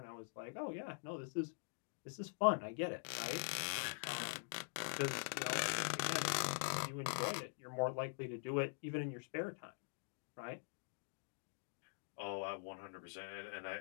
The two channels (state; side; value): silent; right; digital silence